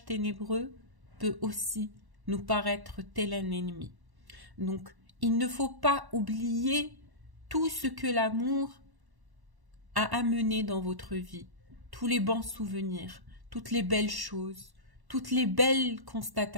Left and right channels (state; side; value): late; left; 1.1 ms